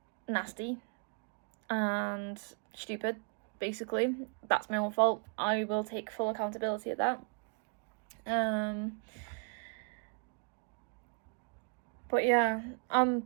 nasty and stupid basically. That's my own fault. I will take full accountability of that. But yeah,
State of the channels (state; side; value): quieter; left; 39.4 dB